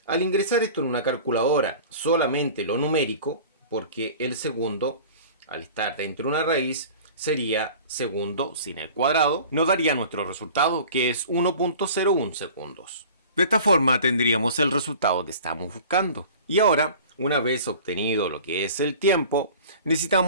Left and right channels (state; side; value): inverted; both; correlation -0.42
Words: Al ingresar esto en una calculadora, solamente lo numérico, porque el segundo, al estar dentro de una raíz, sería segundo sin el cuadrado, nos daría nuestro resultado, que es 1.01 segundos. De esta forma tendríamos el resultado que estamos buscando. Y ahora, una vez obtenido lo que es el tiempo,